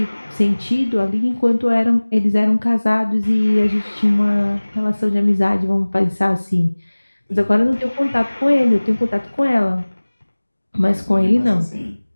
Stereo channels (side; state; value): both; inverted; correlation -1.00